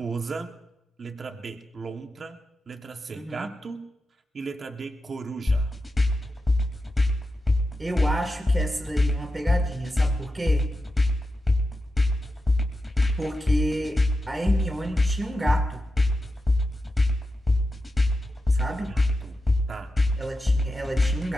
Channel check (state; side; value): normal; both; correlation 0.90